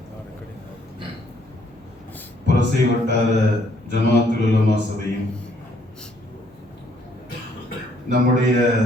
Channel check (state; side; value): normal; both; correlation 0.67